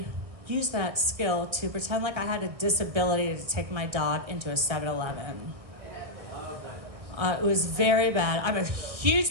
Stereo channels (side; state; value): left; late; 1.6 ms